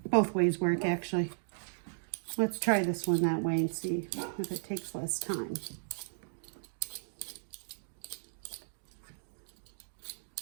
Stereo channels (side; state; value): left; silent; digital silence